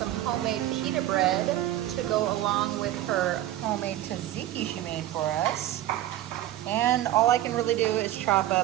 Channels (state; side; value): quieter; left; 13.7 dB